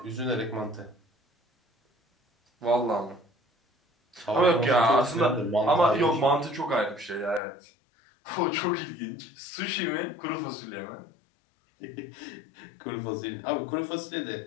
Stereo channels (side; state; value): right; drops out; at 7.4 s